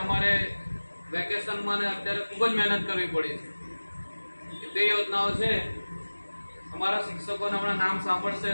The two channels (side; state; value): both; inverted; correlation -1.00